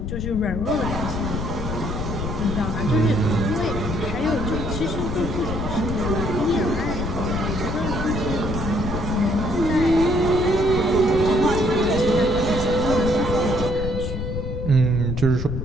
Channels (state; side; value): noise; left; rumble, 4 dB below the sound